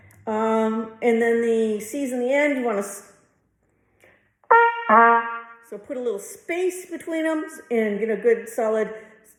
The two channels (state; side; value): identical; both; correlation 1.00